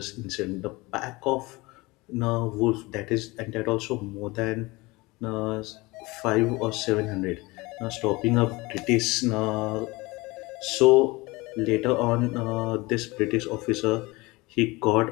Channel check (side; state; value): right; quieter; 22.9 dB